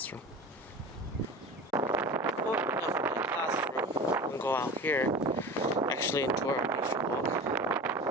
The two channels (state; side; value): normal; both; correlation 0.33